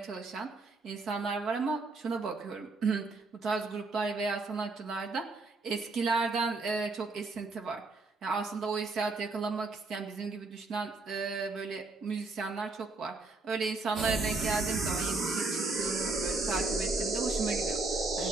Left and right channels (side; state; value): left; quieter; 3.6 dB